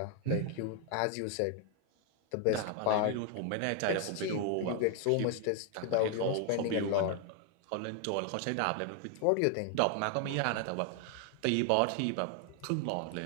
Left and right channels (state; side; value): different; both; correlation 0.00